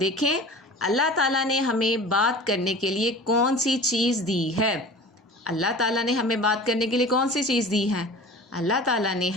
अल्लाह ताला ने हमें बात करने के लिए कौन सी चीज़ दी है। अल्लाह ताला ने हमें बात करने के लिए कौन सी चीज़ दी है? अल्लाह ताला ने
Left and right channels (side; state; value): both; normal; correlation 0.39